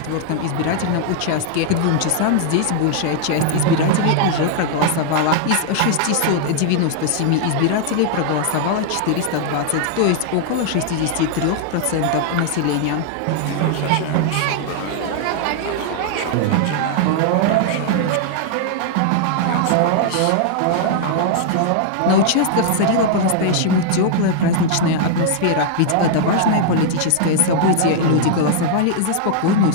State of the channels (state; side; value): different; both; correlation -0.01